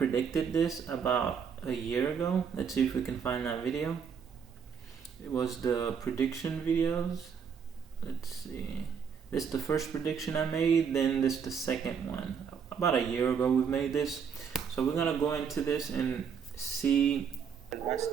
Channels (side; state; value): left; quieter; 6.8 dB